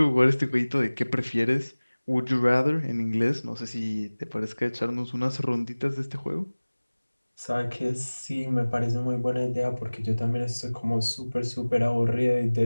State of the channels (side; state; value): both; inverted; correlation -1.00